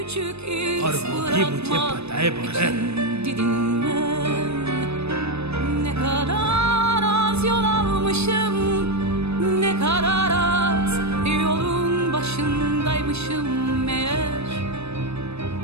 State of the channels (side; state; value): left; late; 0.79 ms